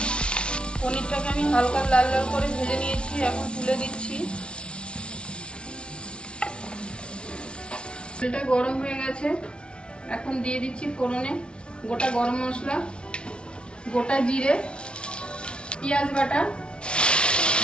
পনিরটাকে আমি হালকা লাল লাল করে ভেজে নিয়েছি, এখন তুলে দিচ্ছি। তেলটা গরম হয়ে গেছে, এখন দিয়ে দিচ্ছি ফোড়নে গোটা গরম মশলা, গোটা জিরে, পেঁয়াজ বাটা,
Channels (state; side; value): late; right; 0.057 ms